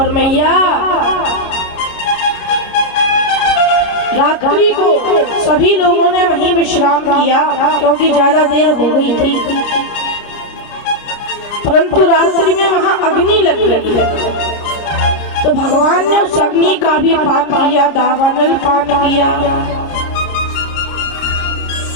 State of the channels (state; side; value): late; right; 29 ms